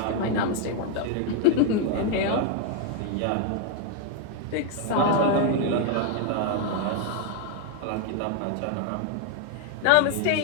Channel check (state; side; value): different; both; correlation 0.00